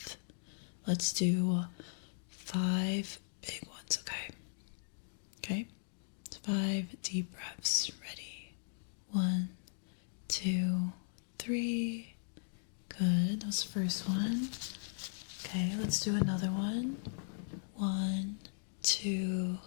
Let's do 5 big ones, okay? Okay? 5 deep breaths, ready? 1, 2, 3. Good. That was the first one. Okay, let's do another one. 1, 2,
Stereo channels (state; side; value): silent; right; digital silence